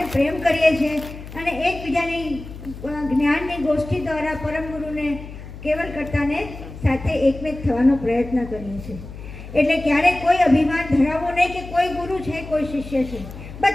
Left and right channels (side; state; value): left; noise; hum, 13 dB below the sound